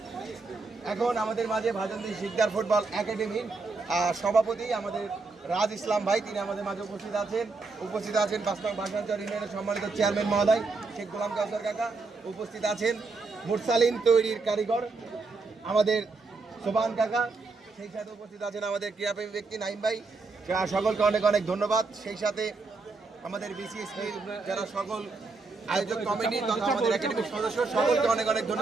এখন আমাদের মাঝে ভাজন্দি শিকদার ফুটবল একাডেমির সভাপতি আমাদের রাজ ইসলাম ভাই, তিনি আমাদের মাঝে উপস্থিত আছেন। 5 নং ভাষাঞ্চল ইউনিয়নের সম্মানিত চেয়ারম্যান মহোদয় শেখ গোলাম কাউসার কাকা উপস্থিত আছেন। মুরসালিন তৈরির কারিগর আমাদের সোবান কাকা, সেই সাথে উপস্থিত আছেন আমাদের ক্রীড়াপ্রেমী ব্যক্তি নাইম ভাই। সকলকে অনেক অনেক ধন্যবাদ। সেই সাথে আমাদের বিসিএসপির যারা সকল আয়োজক কমিটি তথা আমাদের একাডেমির সদস্য, সকলকে অনেক অনেক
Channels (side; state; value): left; quieter; 3.9 dB